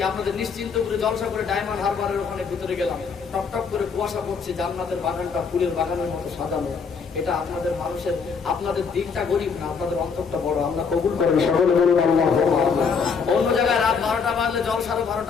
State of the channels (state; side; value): quieter; right; 5.6 dB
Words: আপনাদের নিশ্চিন্ত করে জলসা করে ডায়মন্ড হারবারের ওখানে ভিতরে গেলাম, টপ টপ করে কুয়াশা পড়ছে, জান্নাতের বাগানটা ফুলের বাগানের মতো সাজানো। এটা আপনাদের মানুষের, আপনাদের দিকটা গরিব না, আপনাদের অন্তরটা বড়। আল্লাহ কবুল করেন, সকলে বলুন আল্লাহুম্মা আমিন। অন্য জায়গায় রাত 12টা বাজলে জলসারও